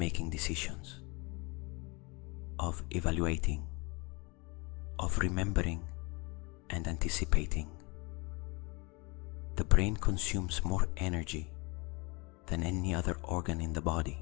decisions, of evaluating, of remembering and anticipating. The brain consumes more energy than any other organ in the body.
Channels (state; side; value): quieter; right; 27.6 dB